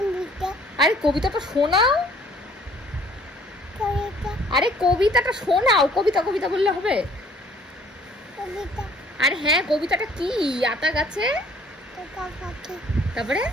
আরে কবিতাটা শোনাও। আরে কবিতাটা শোনাও। কবিতা কবিতা বললে হবে? আর হ্যাঁ কবিতাটা কি? আতা গাছে, তারপরে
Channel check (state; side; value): normal; both; correlation 0.57